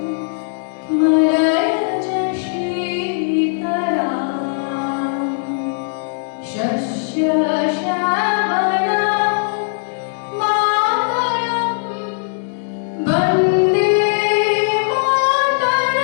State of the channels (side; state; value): right; silent; digital silence